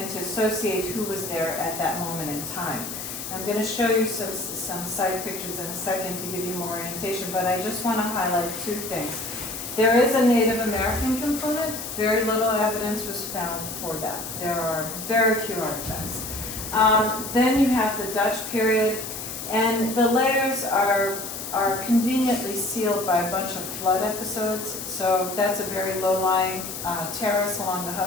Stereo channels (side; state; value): left; noise; hiss, 8 dB below the sound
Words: to associate who was there at that moment in time. I'm going to show you some side pictures in a second to give you more orientation, but I just want to highlight 2 things. There is a Native American component. Very little evidence was found for that. There are very few artifacts. Then you have the Dutch period, and the layers are conveniently sealed by a bunch of flood episodes. So that's a very low-lying terrace along the